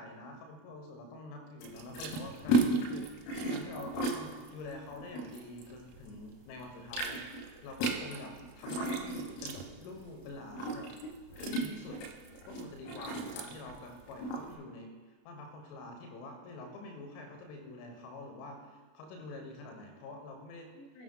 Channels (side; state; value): right; late; 32 ms